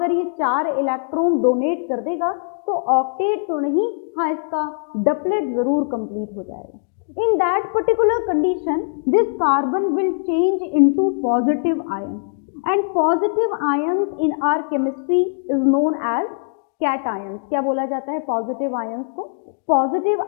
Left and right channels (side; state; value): right; silent; digital silence